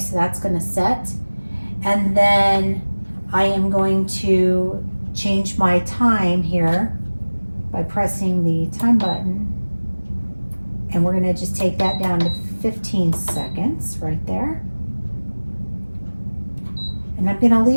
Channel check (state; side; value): inverted; both; correlation -1.00